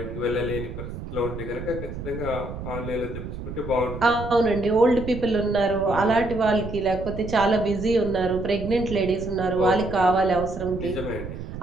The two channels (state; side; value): noise; right; rumble, 9 dB below the sound